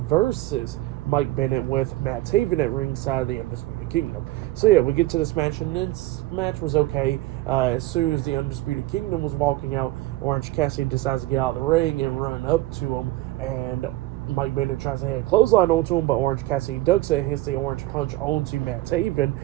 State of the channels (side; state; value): left; quieter; 17.6 dB